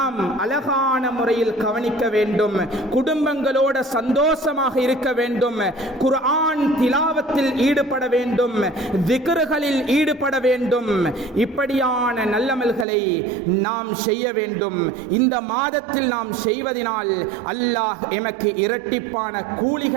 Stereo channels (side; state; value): left; drops out; at 12.9 s